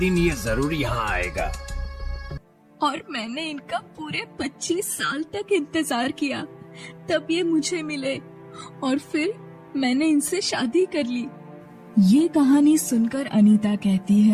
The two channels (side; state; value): both; identical; correlation 1.00